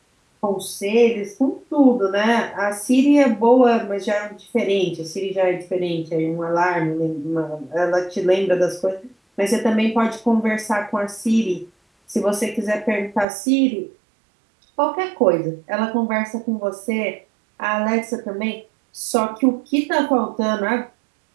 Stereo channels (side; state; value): left; drops out; at 13.2 s